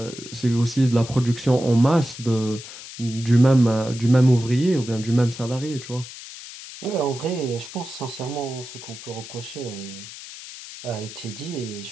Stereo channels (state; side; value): noise; left; hiss, 14 dB below the sound